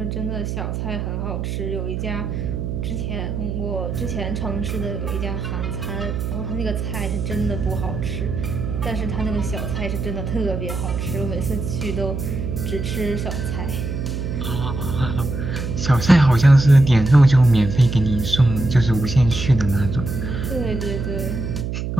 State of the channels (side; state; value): right; noise; hum, 3 dB below the sound